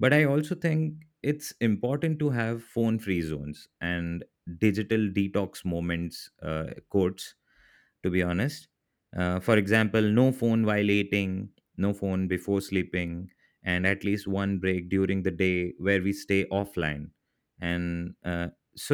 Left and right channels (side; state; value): both; identical; correlation 1.00